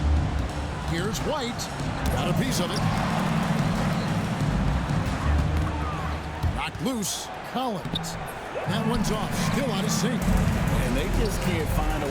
Here's White. Got a piece of it. Knocked loose. Collins. That one's off. Still out of sync. And they just can't find a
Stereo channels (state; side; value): identical; both; correlation 1.00